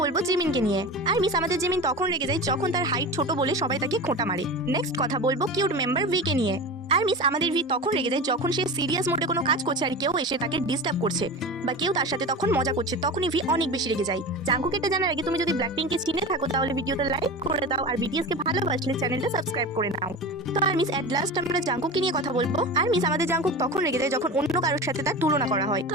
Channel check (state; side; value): normal; both; correlation 0.29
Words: বলবো জিমিনকে নিয়ে। আরমিস, আমাদের জিমিন তখন রেগে যায় যখন তার হাইট ছোট বলে সবাই তাকে খোঁটা মারে। নেক্সট কথা বলবো কিউট মেম্বার ভি কে নিয়ে। আরমিস, আমাদের ভি তখন রেগে যায় যখন সে সিরিয়াস মোডে কোনো কাজ করছে আর কেউ এসে তাকে ডিস্টার্ব করছে বা কেউ তার সাথে তখন মজা করছে, তখনই ভি অনেক বেশি রেগে যায়। জাঙ্কুক এটা জানার আগে তুমি যদি ব্ল্যাকপিঙ্ককে চিনে থাকো তাহলে ভিডিওটা লাইক করে দাও, আর বিটিএস কে ভালোবাসলে চ্যানেলটা সাবস্ক্রাইব করে নাও। তো আরমিস, এট লাস্ট আমরা জাঙ্কুককে নিয়ে কথা বলবো। আরমিস, আমাদের জাঙ্কুক তখন রেগে যায় যখন অন্য কারোর সাথে তার তুলনা করা হয়। তো